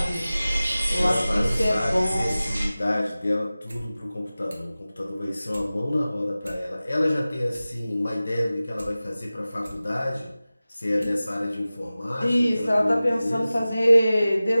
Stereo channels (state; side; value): inverted; both; correlation -0.97